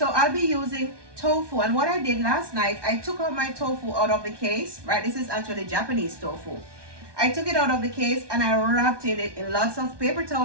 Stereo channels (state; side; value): late; left; 1.2 ms